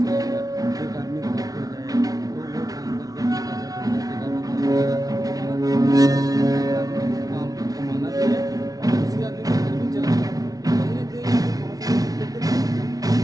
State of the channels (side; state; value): left; late; 0.18 ms